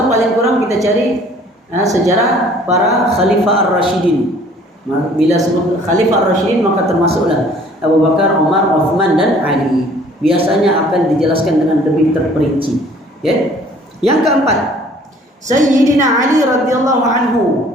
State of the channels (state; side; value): normal; both; correlation 0.55